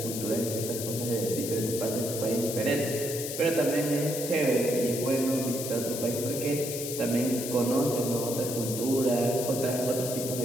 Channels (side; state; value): left; noise; hiss, 6 dB below the sound